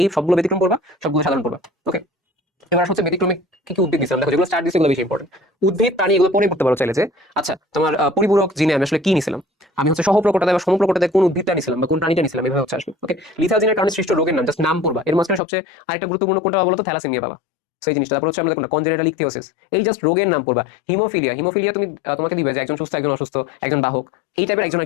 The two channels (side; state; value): right; drops out; at 15.4 s